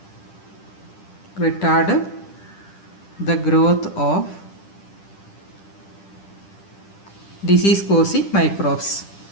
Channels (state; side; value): late; right; 10 ms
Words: disease causing microbes.